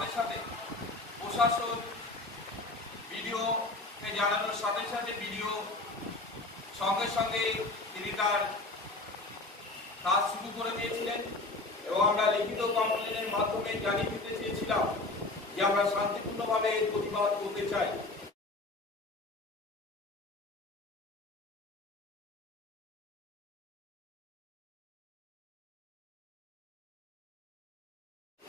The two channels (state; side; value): quieter; right; 3.1 dB